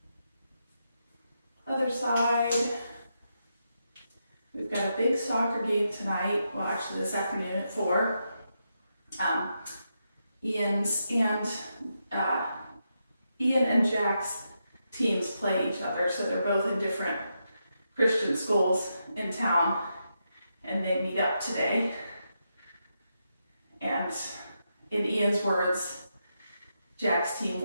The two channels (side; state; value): both; inverted; correlation -0.84